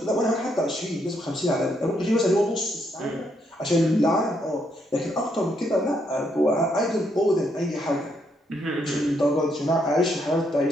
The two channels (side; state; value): both; normal; correlation 0.75